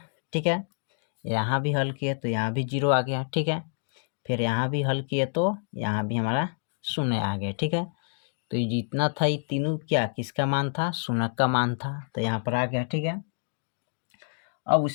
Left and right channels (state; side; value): silent; right; digital silence